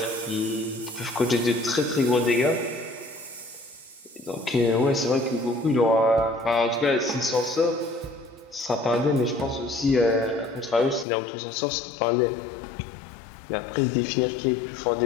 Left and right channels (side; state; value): right; drops out; at 11.1 s